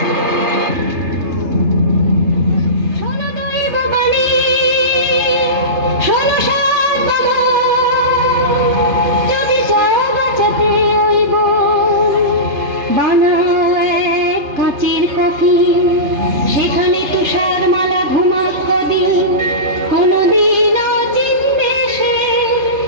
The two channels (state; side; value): late; left; 2.5 ms